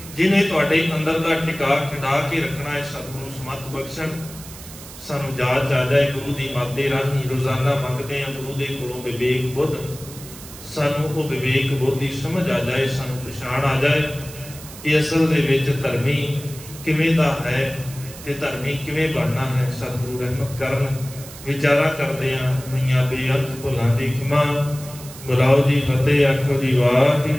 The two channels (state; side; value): noise; right; hiss, 16 dB below the sound